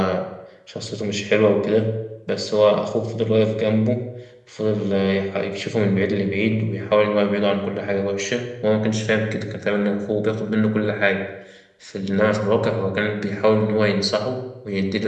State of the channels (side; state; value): both; identical; correlation 1.00